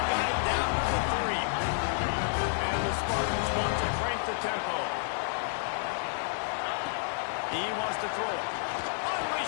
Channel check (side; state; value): right; silent; digital silence